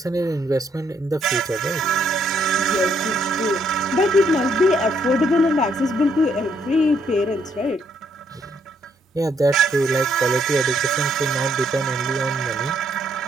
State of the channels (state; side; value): normal; both; correlation 0.71